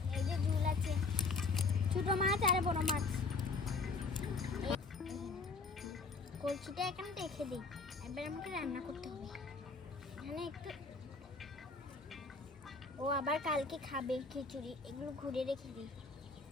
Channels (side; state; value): right; quieter; 4.0 dB